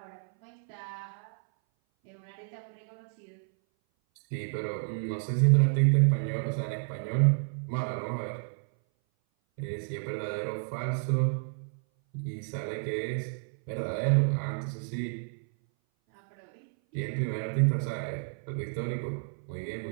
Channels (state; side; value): silent; left; 57 dB below the other